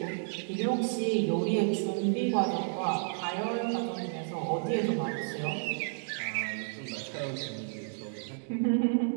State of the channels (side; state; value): left; silent; digital silence